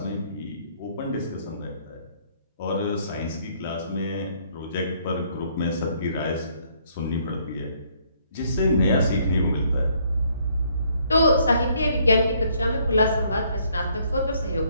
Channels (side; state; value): both; inverted; correlation -0.67